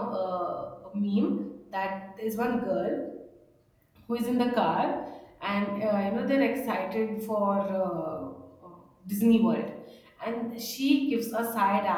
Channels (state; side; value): identical; both; correlation 1.00